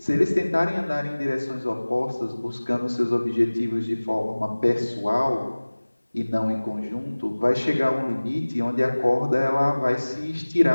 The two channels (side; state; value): both; inverted; correlation -1.00